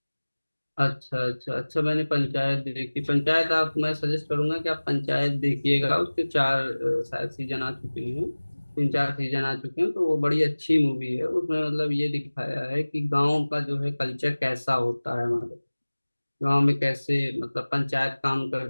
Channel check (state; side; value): inverted; both; correlation -1.00